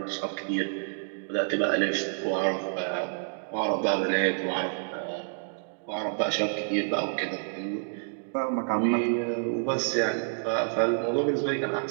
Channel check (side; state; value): left; silent; digital silence